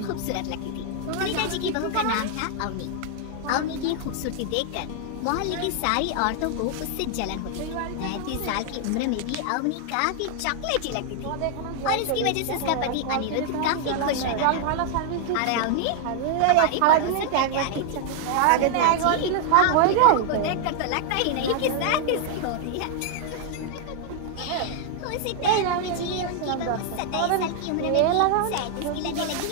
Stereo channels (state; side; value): different; both; correlation 0.00